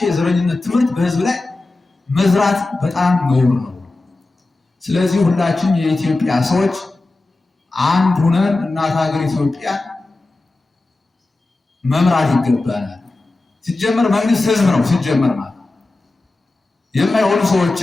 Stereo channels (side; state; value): right; quieter; 3.1 dB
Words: የዘረኝነት ትምህርት በሕዝብ ላይ መዝራት በጣም ነውር ነው። ስለዚህ ሁላችን የኢትዮጵያ ሰዎች አንድ ሁነን እናት ሀገር ኢትዮጵያ መምራት ይገባናል። ሲጀመር መንግስት ህዝብ ነው። ሲጀመር ማለት የማይሆኑ